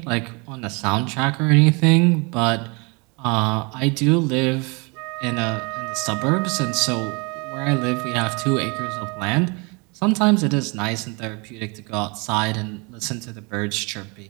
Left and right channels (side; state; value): left; quieter; 30.0 dB